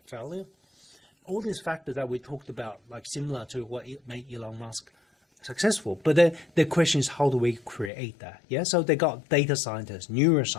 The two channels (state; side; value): drops out; right; at 7.9 s